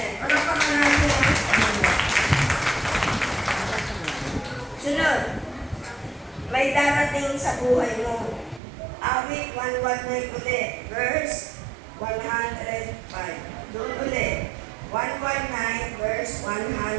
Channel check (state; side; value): drops out; left; at 8.6 s